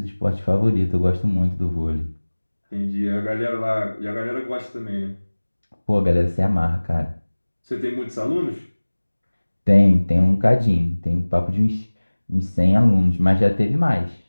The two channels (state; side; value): inverted; both; correlation -1.00